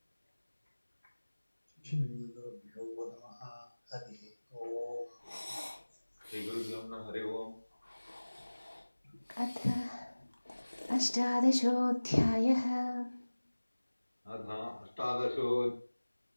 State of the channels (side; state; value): both; inverted; correlation -1.00